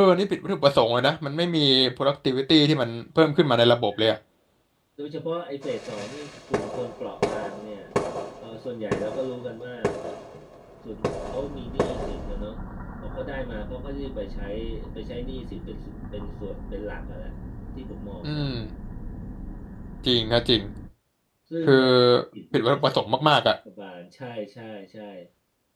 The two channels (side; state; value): both; identical; correlation 1.00